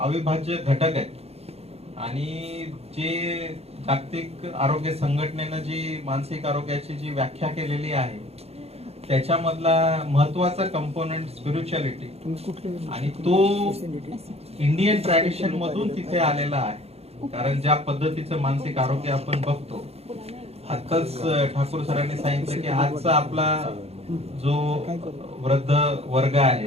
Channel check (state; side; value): late; left; 0.30 ms